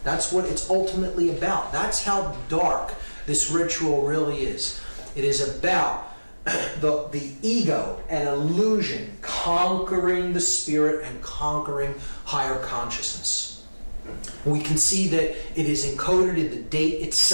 That's what it's ultimately about. That's how dark this ritual really is. It is about the ego and illusion conquering the spirit and conquering higher consciousness. We can see that it is encoded in the date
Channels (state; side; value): inverted; both; correlation -1.00